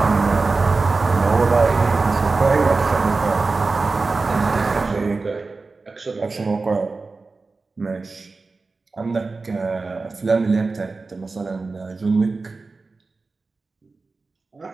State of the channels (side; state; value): left; quieter; 3.9 dB